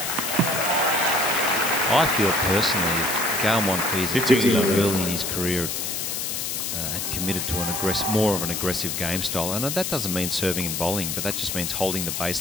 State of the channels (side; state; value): left; noise; hiss, 2 dB below the sound